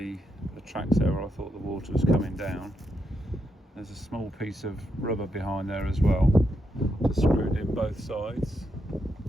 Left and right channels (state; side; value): normal; both; correlation 0.82